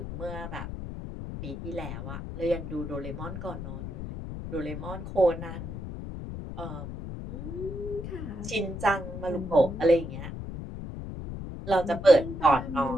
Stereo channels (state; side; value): noise; left; rumble, 8 dB below the sound